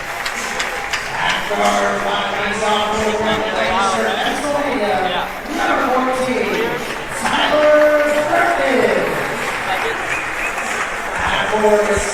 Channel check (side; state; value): both; identical; correlation 1.00